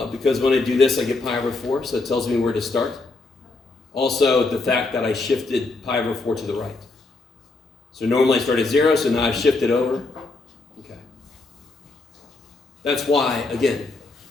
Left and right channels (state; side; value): quieter; right; 3.4 dB